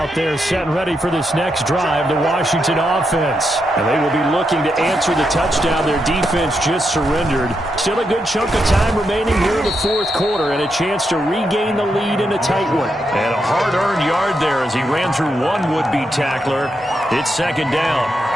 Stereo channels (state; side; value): normal; both; correlation 0.83